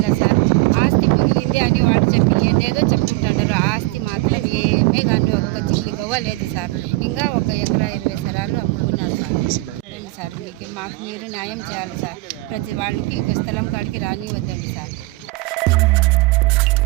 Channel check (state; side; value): quieter; left; 21.7 dB